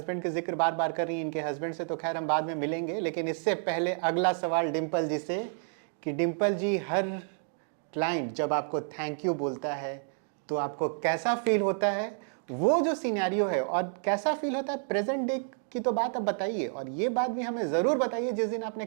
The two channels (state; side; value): silent; left; 58 dB below the other